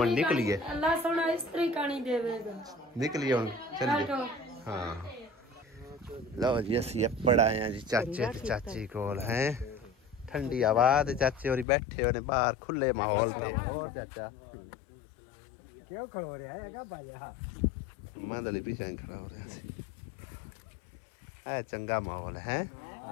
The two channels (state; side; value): drops out; right; at 11.7 s